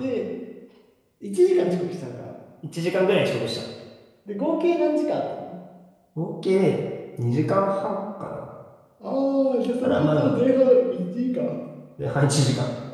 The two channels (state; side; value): identical; both; correlation 1.00